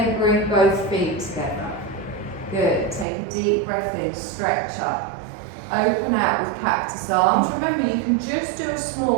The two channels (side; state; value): left; drops out; at 3.1 s